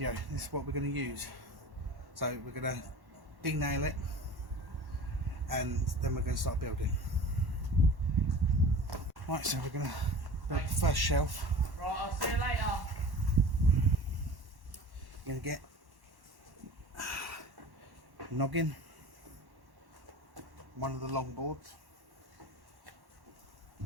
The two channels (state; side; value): late; left; 1.1 ms